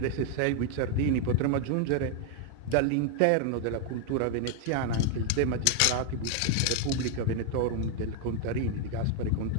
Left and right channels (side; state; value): both; different; correlation 0.00